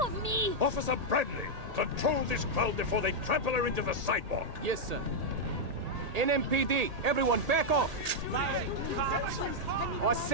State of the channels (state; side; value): late; left; 1.8 ms